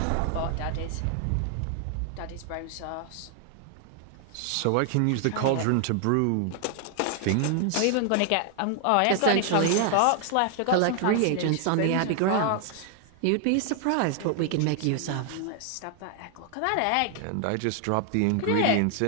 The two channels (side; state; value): both; different; correlation 0.00